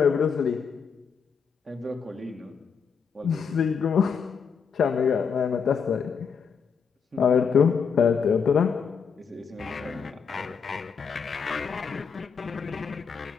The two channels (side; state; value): right; quieter; 6.3 dB